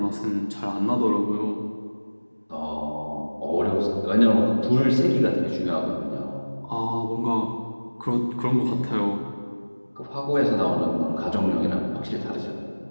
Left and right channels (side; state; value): both; inverted; correlation -1.00